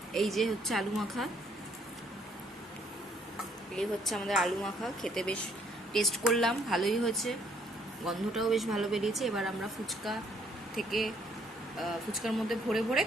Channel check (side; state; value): both; normal; correlation 0.66